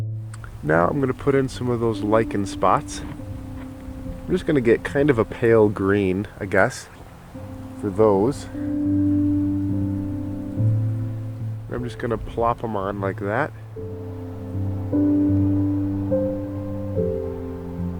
Now I'm going to put in some of those lichen spots. I'm just going to get kind of a pale green, I guess, for those. I'm just going to plop them on like that.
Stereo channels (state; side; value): identical; both; correlation 1.00